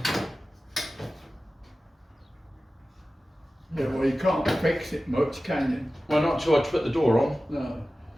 Yeah, well, you can't fix it much, can you? Well, not until I put the door on. No.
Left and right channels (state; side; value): normal; both; correlation 0.96